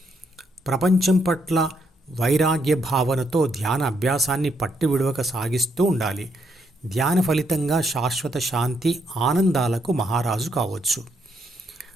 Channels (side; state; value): both; normal; correlation 0.75